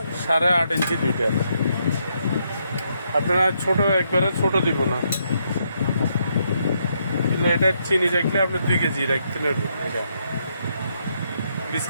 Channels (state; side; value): inverted; both; correlation -0.77